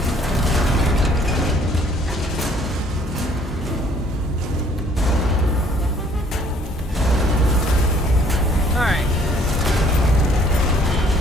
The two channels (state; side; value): normal; both; correlation 0.60